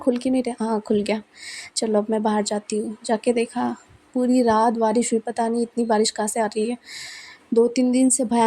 क्यों नहीं रहा? हाँ, खुल गया। चलो अब मैं बाहर जाती हूँ। जाके देखा पूरी रात बारिश हुई, पता नहीं इतनी बारिश कहाँ से आ रही है। 2-3 दिन से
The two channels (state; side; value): identical; both; correlation 1.00